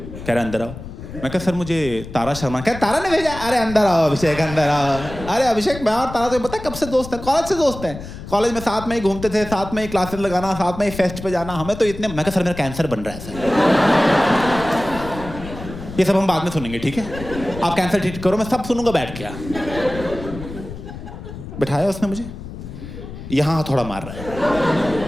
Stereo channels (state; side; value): noise; left; rumble, 12 dB below the sound